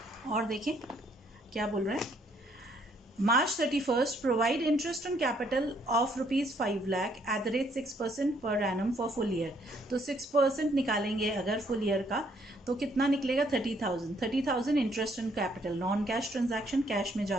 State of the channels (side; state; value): both; normal; correlation 0.67